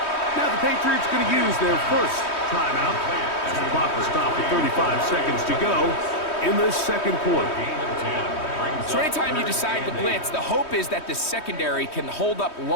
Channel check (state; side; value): late; right; 3.2 ms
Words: Now the Patriots going to use their first timeout as the clock will stop with 35 seconds to go in the second quarter. So anytime you decide to blitz, the hope is that the secondary can hold up